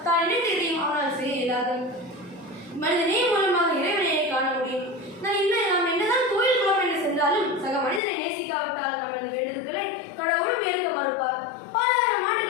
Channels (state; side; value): drops out; right; at 8.0 s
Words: தான் நினைத்ததையும் அவனால் செய்ய இயலாது. மனிதநேயம் மூலமாக இறைவனையை காண முடியும். நாம் என்னதான் கோயில் குளம் என்று சென்றாலும் சக மனிதனை நேசிக்காவிட்டால் நமது வேண்டுதல்களை கடவுளும் ஏற்க மறுப்பார். பலாயிரம்